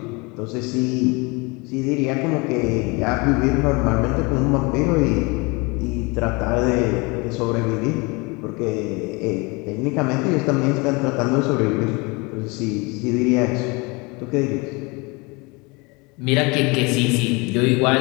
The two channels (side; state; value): right; quieter; 27.3 dB